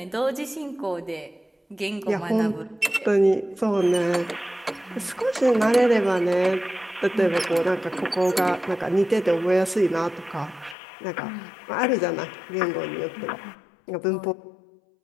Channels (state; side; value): drops out; right; at 10.8 s